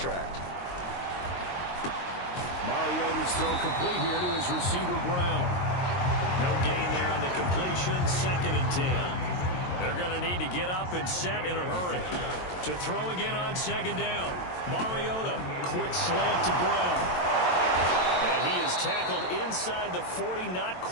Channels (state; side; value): late; right; 22 ms